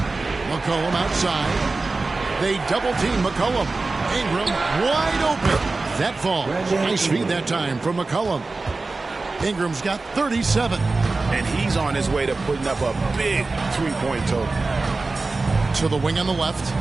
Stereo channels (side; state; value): left; quieter; 3.6 dB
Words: McCollum outside. They double team McCollum. Ingram wide open. That falls. Nice feed that time from McCollum. Ingram's got 37. And he's on his way to putting up a big 3-point total. To the wing on the left.